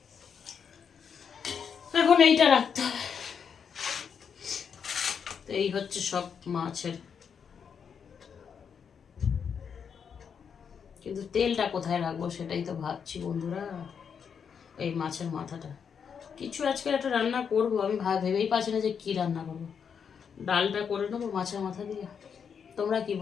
এখন এইটা রাখতে হবে। এই হচ্ছে সব মাছের, কিন্তু তেলটা কোথায় রাখবো সেটাই তো ভাবছি বন্ধুরা। এই মাছের মাথাটা কিছু আজকে একটা রান্না করব, আমি ভেবেই পাচ্ছি না যে কি রান্না করবো। ডালটা করে নেবো মাছের মাথা দিয়ে। তোমরা কি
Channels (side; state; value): right; quieter; 6.9 dB